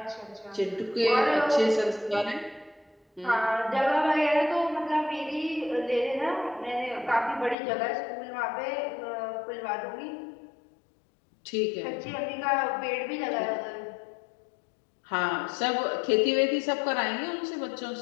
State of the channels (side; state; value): right; drops out; at 7.6 s